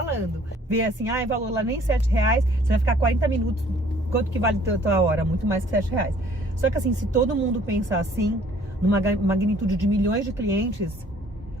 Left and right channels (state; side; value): normal; both; correlation 0.57